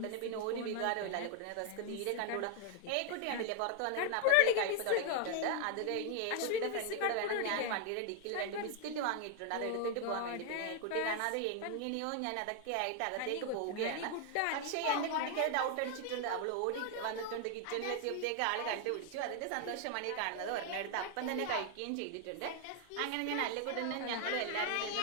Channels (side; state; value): both; different; correlation 0.00